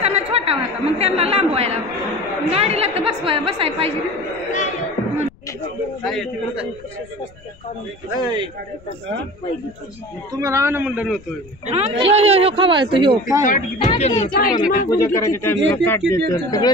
छोटा होता, मग त्यांना लांबवायला गाडीला तर बसायला पाहिजे ना. तुम्हाला आण म्हणलं नव्हतं. ह्यो खवाळतो ह्यो. सगळं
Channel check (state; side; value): noise; left; rumble, 25 dB below the sound